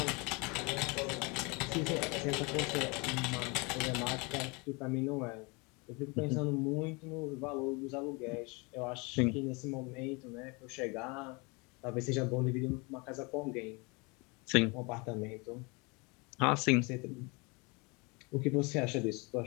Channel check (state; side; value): quieter; right; 28.7 dB